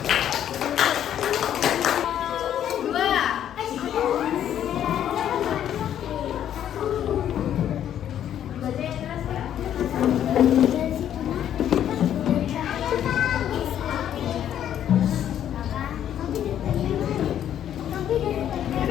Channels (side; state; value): right; quieter; 10.4 dB